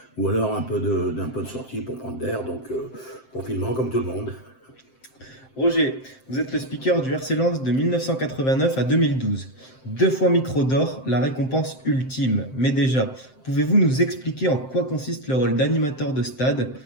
ou alors un peu de sortie pour prendre l'air, donc confinement comme tout le monde. Roger, vous êtes le speaker du RC Lens de 1989 à 2012. Deux fois micro d'or, la récompense ultime. Mais déjà, pouvez-vous nous expliquer en quoi consiste le rôle d'animateur de stade,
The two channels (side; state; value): right; late; 7.7 ms